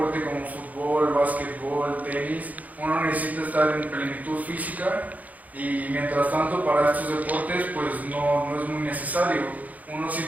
como fútbol, básquetbol, tenis, uno necesita estar en plenitud física y mientras tanto para estos deportes pues no es muy necesario. Uno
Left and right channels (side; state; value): left; late; 0.077 ms